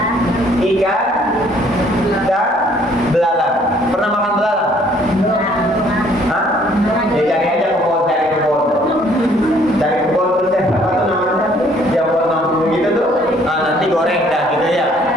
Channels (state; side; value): normal; both; correlation 0.61